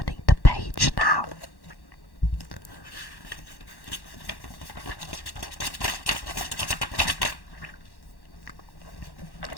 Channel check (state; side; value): late; right; 1.1 ms